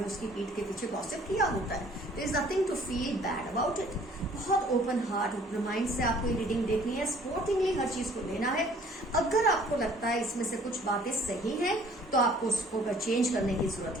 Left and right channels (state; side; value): normal; both; correlation 0.56